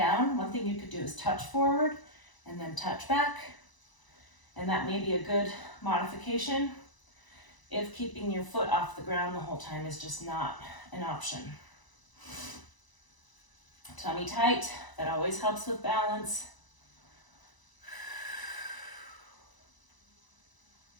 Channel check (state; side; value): late; right; 1.0 ms